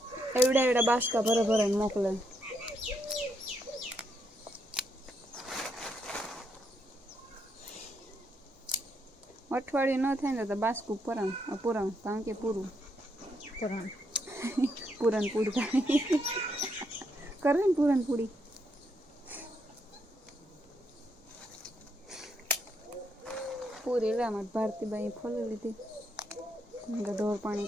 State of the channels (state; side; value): normal; both; correlation 0.77